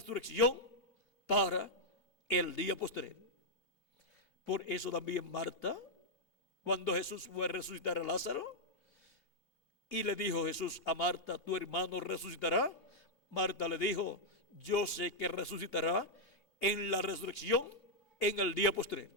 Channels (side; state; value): right; late; 2.9 ms